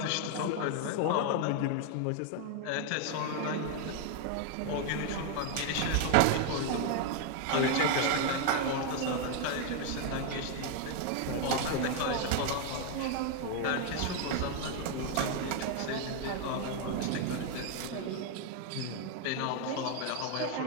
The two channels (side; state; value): both; different; correlation 0.00